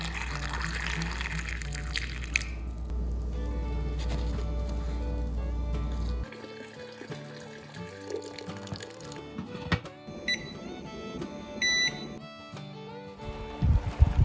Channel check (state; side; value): identical; both; correlation 1.00